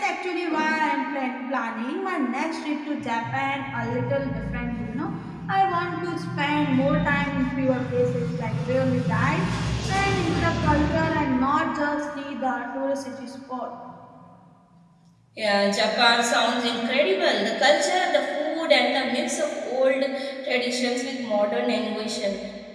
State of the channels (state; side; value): identical; both; correlation 1.00